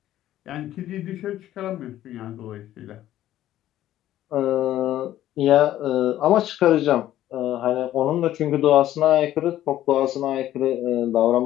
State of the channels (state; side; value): quieter; right; 13.1 dB